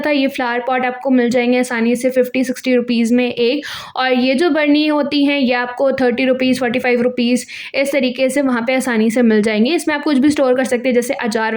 ये फ्लावर पॉट आपको मिल जाएंगे आसानी से 50-60 रुपीज़ में एक। और ये जो बर्नी होती हैं ये आपको 30 रुपीज़, 45 रुपीज़ इस तरीके से वहाँ पे आसानी से मिल जाएंगे। इसमें आप कुछ भी स्टोर कर सकते हैं, जैसे अचार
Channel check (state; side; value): identical; both; correlation 1.00